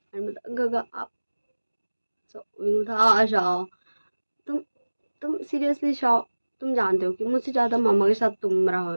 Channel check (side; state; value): both; inverted; correlation -1.00